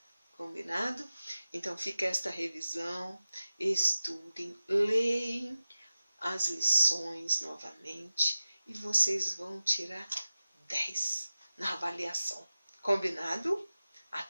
Combinado? Então, fica esta revisão. Estudem, leem as lições novamente e vocês vão tirar 10 na avaliação. Combinado?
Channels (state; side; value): inverted; both; correlation -0.94